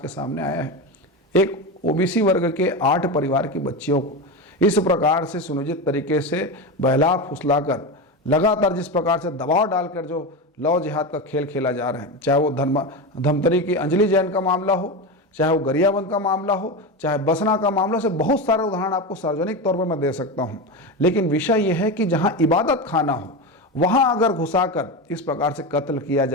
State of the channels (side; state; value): both; normal; correlation 0.19